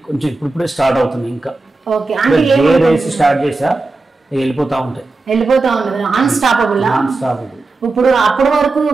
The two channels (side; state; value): left; quieter; 3.4 dB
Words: కొంచెం ఇప్పుడిప్పుడే స్టార్ట్ అవుతుంది. ఇంకా ఓకే, రేస్ స్టార్ట్ చేసా, వెళ్ళిపోతా ఉంటాయి. అన్స్టాపబుల్. ఇప్పుడు అప్పటి వరకు